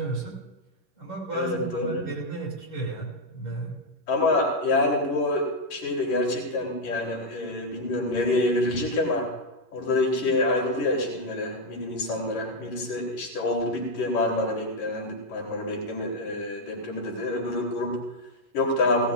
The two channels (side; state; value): right; late; 11 ms